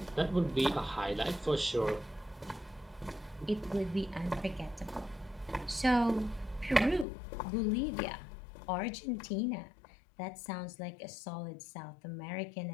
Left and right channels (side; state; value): right; drops out; at 7.1 s